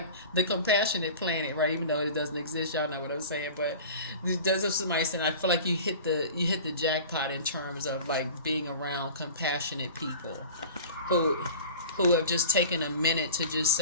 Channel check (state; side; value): inverted; both; correlation -0.39